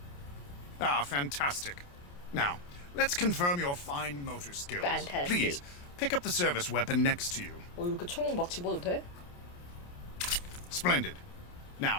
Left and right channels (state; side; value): late; right; 28 ms